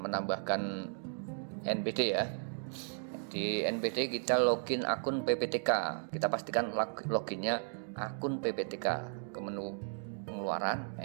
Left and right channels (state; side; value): silent; left; digital silence